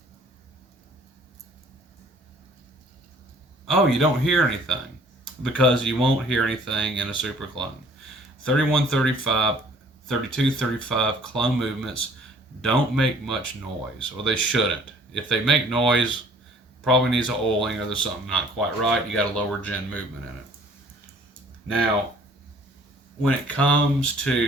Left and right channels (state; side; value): normal; both; correlation 0.55